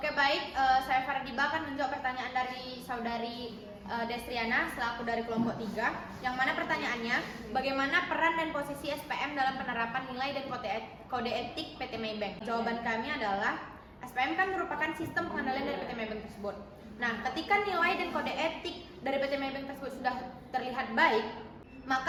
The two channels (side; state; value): both; identical; correlation 1.00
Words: baik, saya Fardiba akan menjawab pertanyaan dari saudari Destriana selaku dari kelompok 3, yang mana pertanyaannya bagaimana peran dan posisi SPM dalam penerapan nilai dan kode etik PT Maybank. Jawaban kami adalah SPM kan merupakan sistem pengendalian dari PT Maybank tersebut. Nah, ketika nilai dan kode etik dari PT Maybank tersebut sudah terlihat baik,